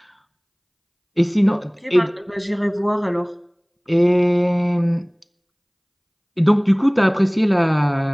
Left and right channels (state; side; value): identical; both; correlation 1.00